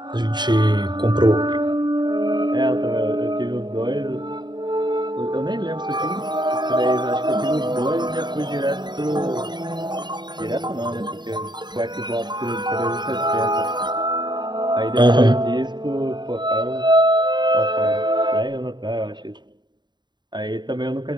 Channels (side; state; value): left; late; 0.21 ms